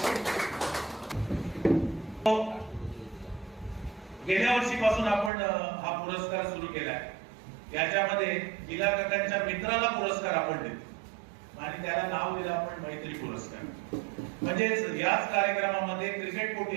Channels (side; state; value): left; drops out; at 5.3 s